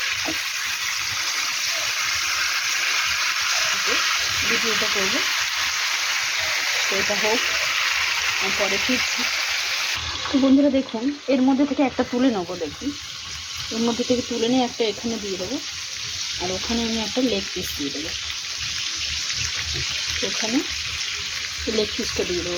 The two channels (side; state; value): both; identical; correlation 1.00